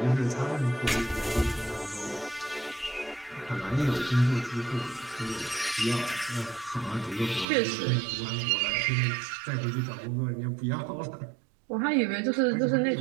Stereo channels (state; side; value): drops out; left; at 7.5 s